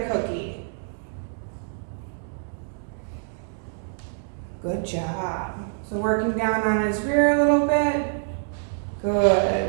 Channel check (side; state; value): left; silent; digital silence